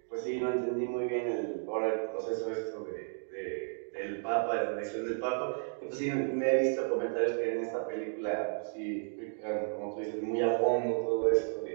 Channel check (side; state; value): left; silent; digital silence